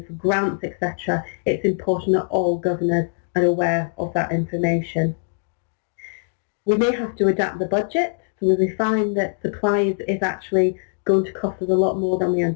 for grants, etc., it's important that all governors are aware of that information. We may have to adapt the budget, so if we find that supplies is actually going to cost us a lot more than we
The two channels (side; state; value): right; silent; digital silence